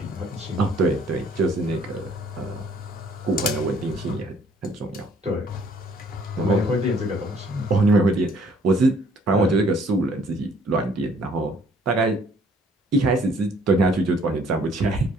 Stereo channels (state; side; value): normal; both; correlation 0.60